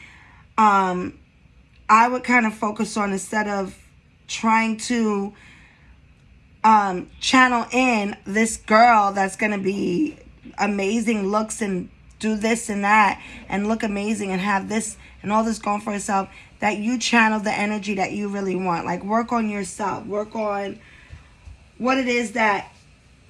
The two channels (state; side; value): identical; both; correlation 1.00